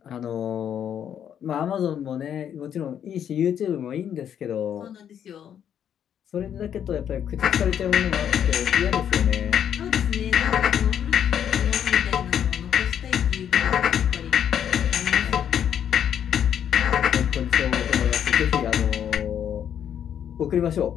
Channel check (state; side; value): quieter; right; 9.2 dB